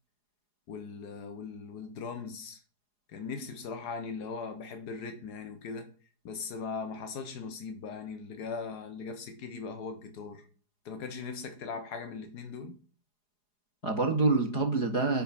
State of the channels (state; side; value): late; right; 4.8 ms